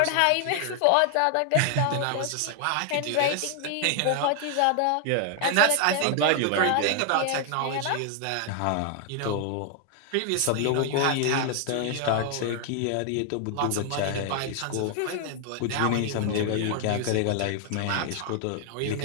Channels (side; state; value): both; different; correlation 0.00